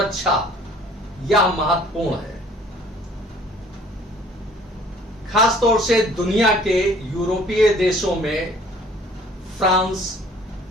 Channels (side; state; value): both; normal; correlation 0.54